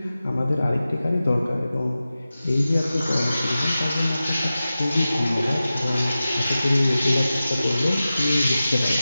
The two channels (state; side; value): inverted; both; correlation -0.95